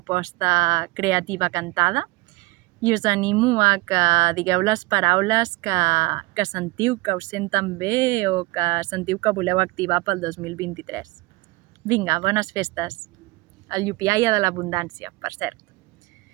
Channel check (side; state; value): left; quieter; 22.7 dB